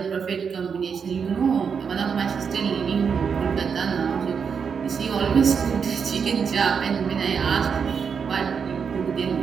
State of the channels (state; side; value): quieter; left; 6.4 dB